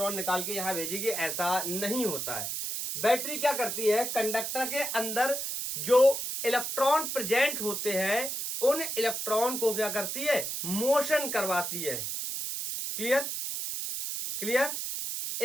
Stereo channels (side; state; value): right; noise; hiss, 3 dB below the sound